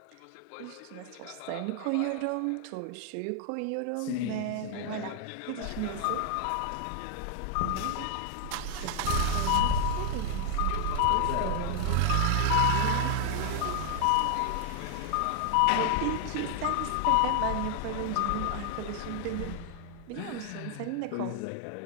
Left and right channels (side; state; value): both; different; correlation 0.00